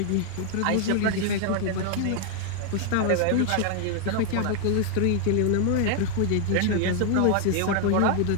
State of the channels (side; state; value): both; different; correlation 0.00